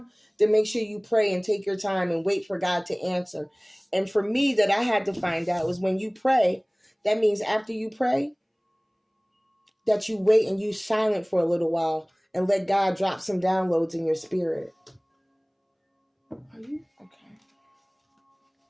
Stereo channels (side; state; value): both; identical; correlation 1.00